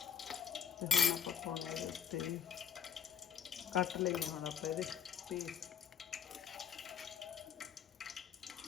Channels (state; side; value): quieter; right; 7.8 dB